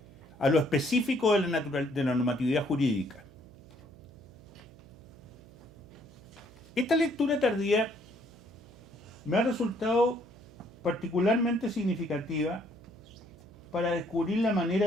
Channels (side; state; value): right; noise; hum, 22 dB below the sound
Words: a lo específico de la normatividad jurídica. Esta lectura tardía me ha resultado particularmente significativa para descubrir la manera